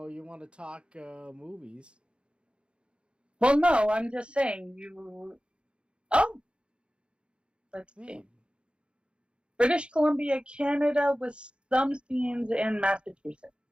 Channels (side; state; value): left; late; 0.056 ms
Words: want to talk movies? Well, no, I'm just saying you. Oh, let's see. Man, British Columbia, Canada, with some scenes in Massachusetts.